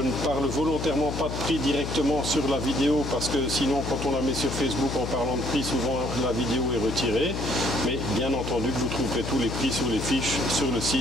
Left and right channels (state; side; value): noise; left; hum, 5 dB below the sound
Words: parle volontairement pas de prix directement sur la vidéo parce que sinon, quand on la met sur Facebook en parlant de prix, souvent la vidéo est retirée. Mais bien entendu que vous trouverez tous les prix sur les fiches sur le